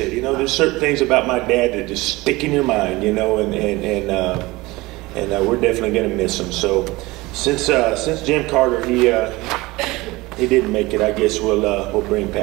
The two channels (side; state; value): left; quieter; 21.2 dB